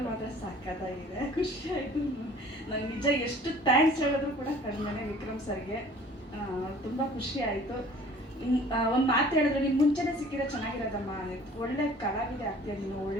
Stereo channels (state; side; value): normal; both; correlation 0.50